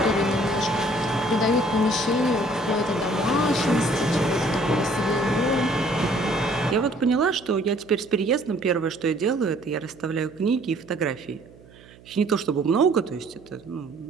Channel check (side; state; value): right; noise; hum, 24 dB below the sound